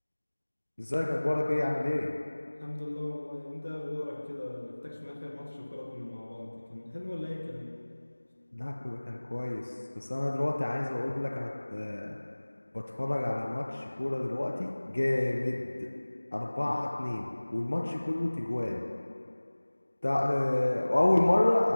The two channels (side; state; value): both; inverted; correlation -1.00